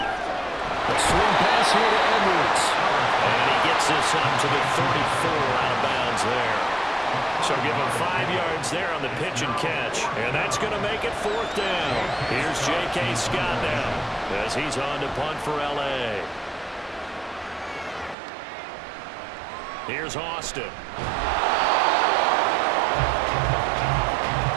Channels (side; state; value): left; drops out; at 18.2 s